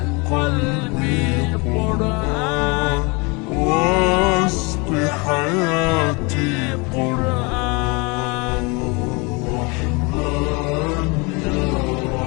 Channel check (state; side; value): quieter; right; 28.7 dB